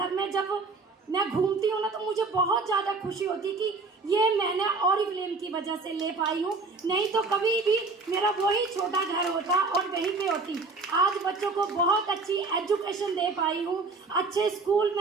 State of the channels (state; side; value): quieter; left; 3.9 dB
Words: में जब मैं घूमती हूँ ना, तो मुझे बहुत ज़्यादा खुशी होती कि ये मैंने ऑरिफ्लेम की वजह से ले पाई हूँ। नहीं तो कभी भी मेरा वही छोटा घर होता और वहीं पे होती। आज बच्चों को बहुत अच्छी एजुकेशन दे पाई हूँ, अच्छे स्कूल